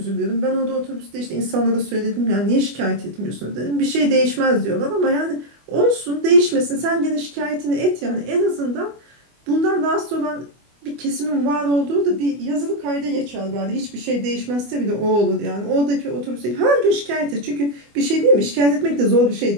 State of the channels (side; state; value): left; late; 24 ms